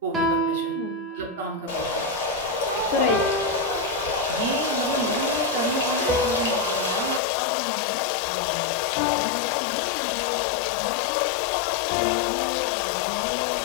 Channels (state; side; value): drops out; right; at 7.2 s